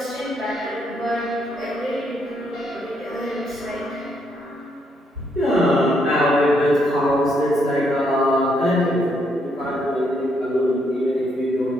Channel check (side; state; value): both; normal; correlation 0.74